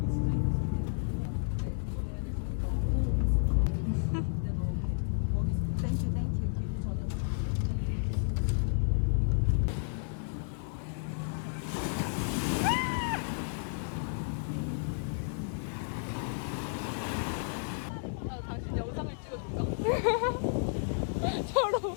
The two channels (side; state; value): right; silent; 56 dB below the other